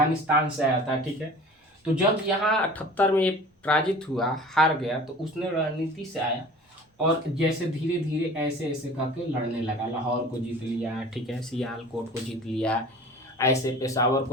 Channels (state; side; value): normal; both; correlation 0.43